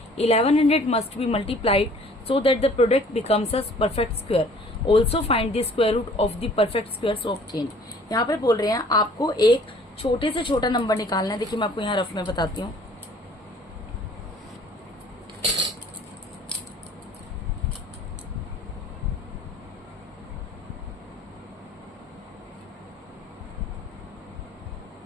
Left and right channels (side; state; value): both; normal; correlation 0.54